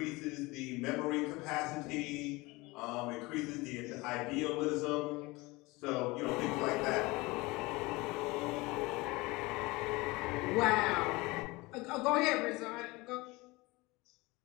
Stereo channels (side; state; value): right; quieter; 22.8 dB